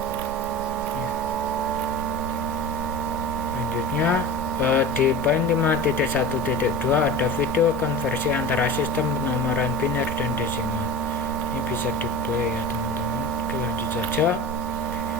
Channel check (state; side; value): normal; both; correlation 0.32